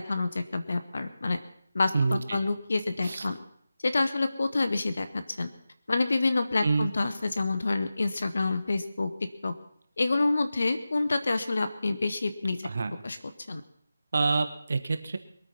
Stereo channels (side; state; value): both; inverted; correlation -0.94